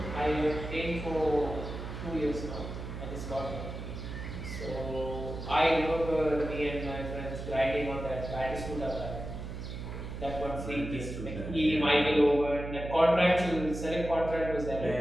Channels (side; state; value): right; noise; hum, 8 dB below the sound